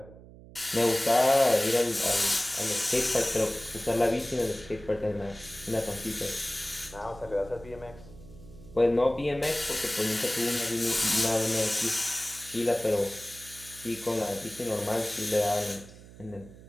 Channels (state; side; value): noise; right; hum, 19 dB below the sound